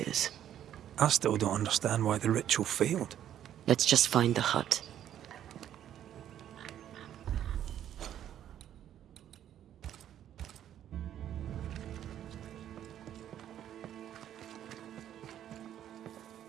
I still don't understand why the ritual failed. Let's just find the hut.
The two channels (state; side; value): quieter; left; 10.8 dB